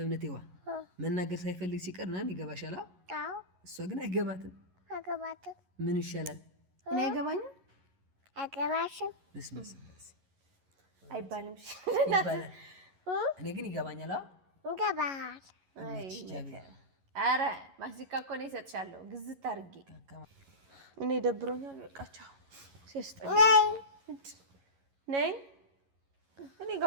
መናገር ሳይፈልግ ሲቀር ምናምን ይገባሻል። እሷ ግን አይገባትም። ምን ይሻላል? እኔ አይገባኝም። አይገባሽም አይባልም። ይባላል። እኔ ግን ይገባኛል። ይገባል። ኧረ ማስቲካ እኮ ነው እሰጥሻለሁ ግዝት አድርጌ። እኔ ደብሮኛል። በቃ ቻው። ነይ እኔ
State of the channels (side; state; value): left; late; 11 ms